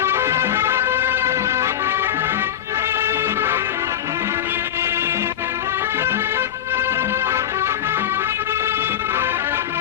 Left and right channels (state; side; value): quieter; right; 10.6 dB